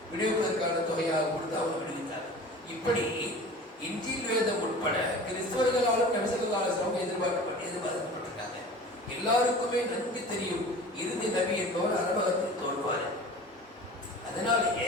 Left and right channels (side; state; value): both; normal; correlation 0.40